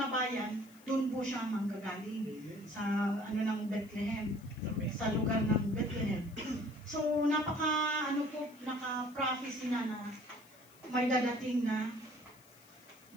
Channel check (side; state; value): left; noise; hiss, 26 dB below the sound